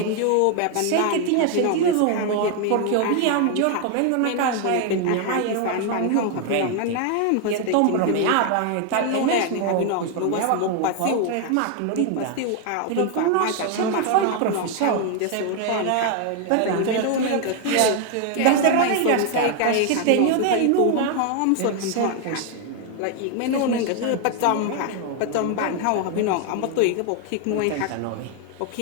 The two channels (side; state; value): both; different; correlation 0.01